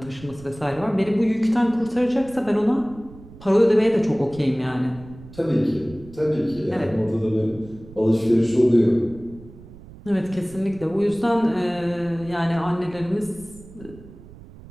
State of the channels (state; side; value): noise; right; rumble, 19 dB below the sound